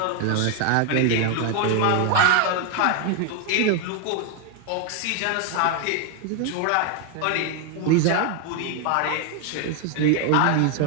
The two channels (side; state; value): both; different; correlation 0.01